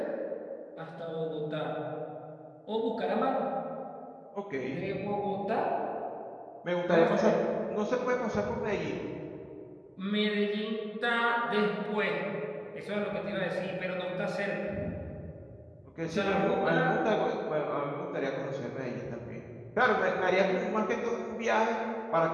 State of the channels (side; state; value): both; identical; correlation 1.00